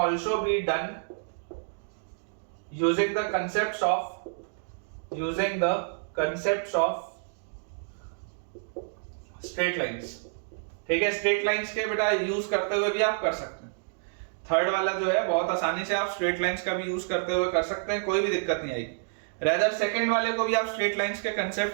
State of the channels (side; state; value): left; silent; digital silence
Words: be done using the concepts of straight lines. ठीक है, स्ट्रेट लाइंस के बेटा यूज करते हुए भी आप कर सकते हैं। थर्ड वाला जो है बहुत आसानी से आप स्ट्रेट लाइंस का भी यूज करते हुए कर सकते हैं, कोई भी दिक्कत नहीं आएगी। रेदर सेकंड वाले को भी आप स्ट्रेट लाइंस के